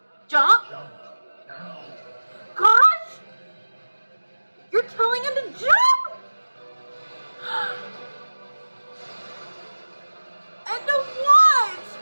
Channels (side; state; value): both; inverted; correlation -1.00